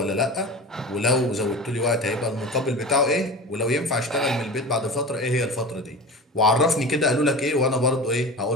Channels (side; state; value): both; normal; correlation 0.32